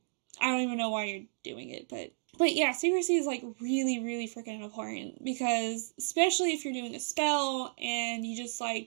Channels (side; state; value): left; silent; digital silence